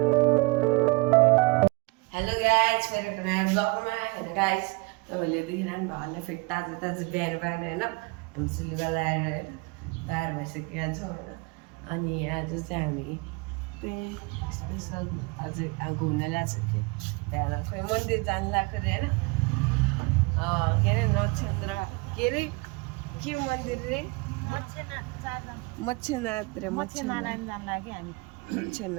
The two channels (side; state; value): left; quieter; 27.6 dB